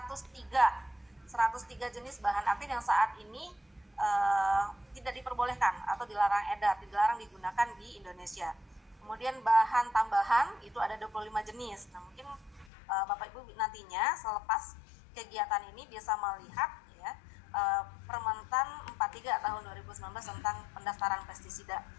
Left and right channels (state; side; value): drops out; right; at 12.7 s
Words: jenis bahan aktif yang saat ini tidak diperbolehkan atau dilarang edar, dilarang digunakan di Indonesia. Kemudian bahan tambahan itu ada 25 jenis. Nah, mungkin Bapak Ibu nantinya selepas kegiatan ini bisa melihat ya, Permentan 43 tahun 2019 tentang pendaftaran pestisida.